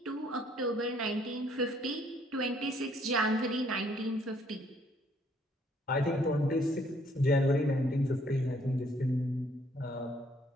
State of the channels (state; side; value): normal; both; correlation 0.65